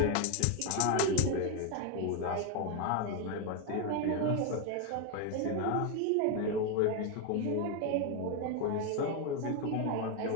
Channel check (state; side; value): different; both; correlation 0.01